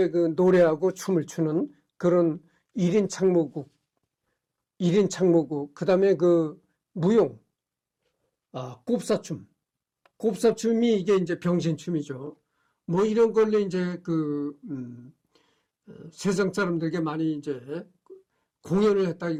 노래하고 춤을 추는 그런 1인 창모극, 그 다음에 무용, 곱사춤이 이게 이제 병신춤이죠. 뭐 이런 걸로 이제 세상 사람들에게 많이 이제 공연을 했다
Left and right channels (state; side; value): identical; both; correlation 1.00